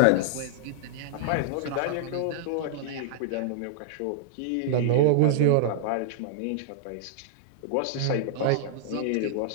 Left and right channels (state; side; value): different; both; correlation -0.01